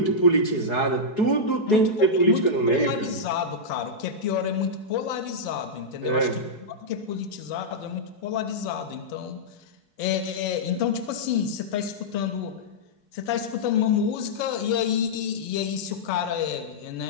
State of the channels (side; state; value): right; late; 4.6 ms